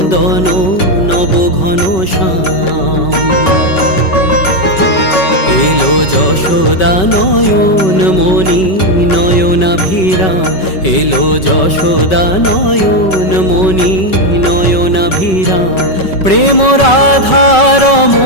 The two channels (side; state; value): right; late; 5.3 ms